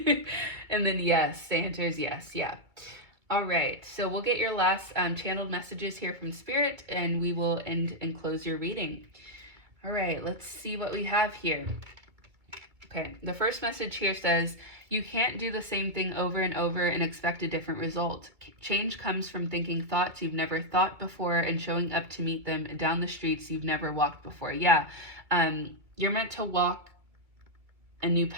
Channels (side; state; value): left; late; 2.2 ms